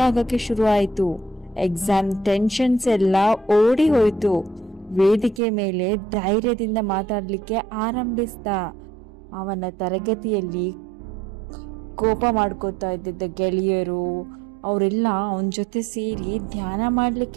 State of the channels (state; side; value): drops out; left; at 5.4 s